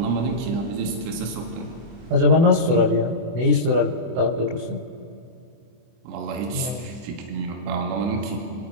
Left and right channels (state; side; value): late; left; 24 ms